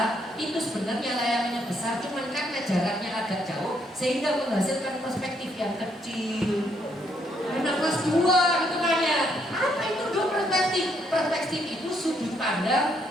Itu sebenarnya layangannya besar, cuman karena jaraknya agak jauh sehingga menghasilkan perspektif yang kecil." Anak kelas 2 gitu kan ya. Apa itu Duk perspektif? Perspektif itu sudut pandang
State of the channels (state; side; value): normal; both; correlation 0.72